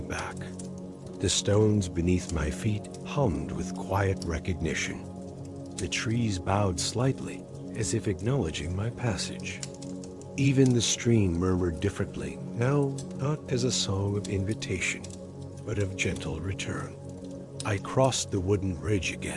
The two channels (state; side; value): identical; both; correlation 1.00